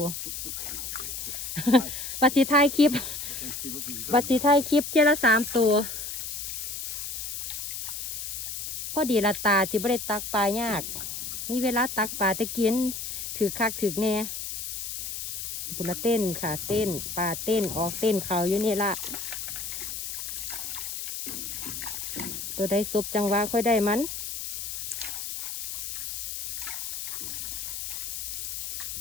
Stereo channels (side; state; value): left; noise; hiss, 5 dB below the sound